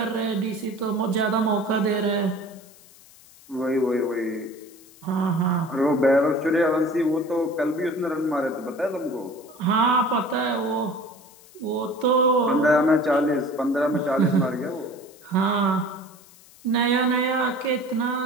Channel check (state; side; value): noise; left; hiss, 24 dB below the sound